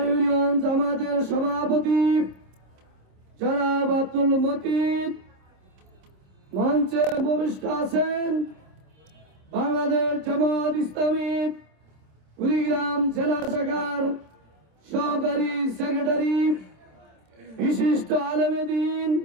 ইউনিয়ন জামাতের সভাপতি জনাব আব্দুল মতিন মঞ্চে উপবিষ্ট আছেন। বাংলাদেশ জামাত ইসলামী কুড়িগ্রাম জেলা শাখার সহকারী সেক্রেটারি, বিশিষ্ট আলেমে দ্বীন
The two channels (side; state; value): left; late; 27 ms